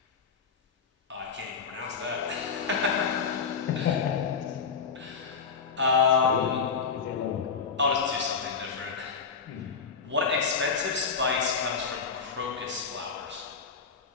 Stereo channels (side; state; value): right; quieter; 5.6 dB